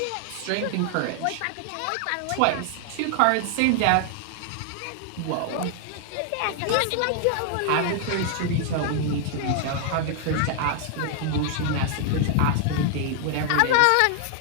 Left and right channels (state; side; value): different; both; correlation 0.00